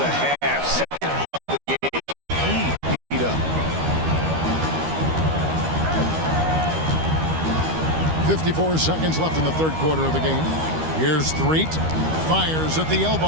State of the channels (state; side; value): late; left; 13 ms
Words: half. Second of the game, he beat up. 54 seconds left in the third quarter of the game. Here's Threet. Fires at the